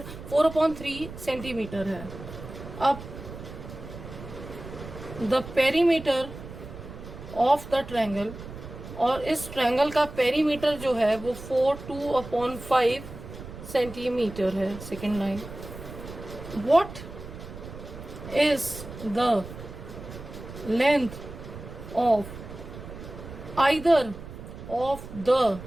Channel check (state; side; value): noise; right; rumble, 13 dB below the sound